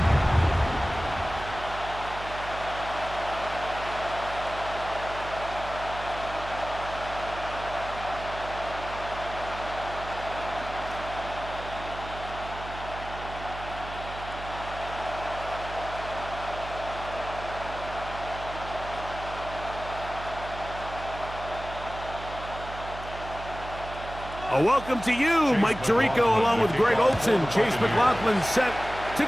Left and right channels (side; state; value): right; noise; hum, 11 dB below the sound